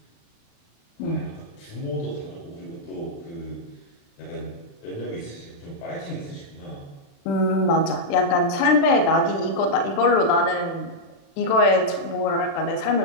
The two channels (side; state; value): right; late; 36 ms